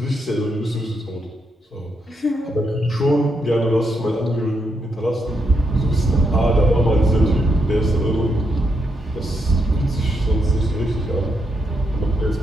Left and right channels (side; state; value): both; normal; correlation 0.80